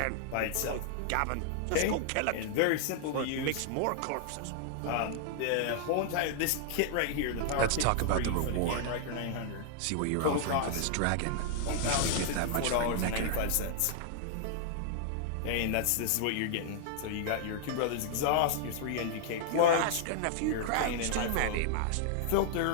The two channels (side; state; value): both; different; correlation -0.01